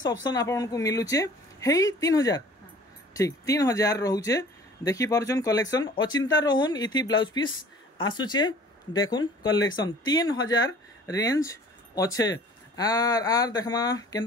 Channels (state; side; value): normal; both; correlation 0.49